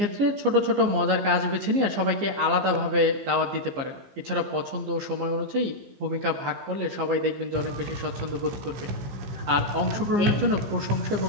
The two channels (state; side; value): late; left; 15 ms